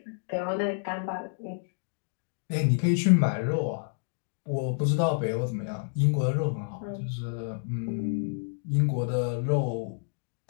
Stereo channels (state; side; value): silent; right; digital silence